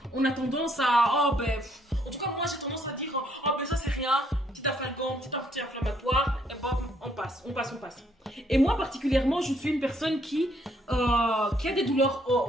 On a tendance à en tout cas moi j'ai tendance à dire ça c'est rien, petit afalgan, petit anti-inflammatoire et on passe. Et moi particulièrement je suis une personne qui a des douleurs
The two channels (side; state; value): both; normal; correlation 0.69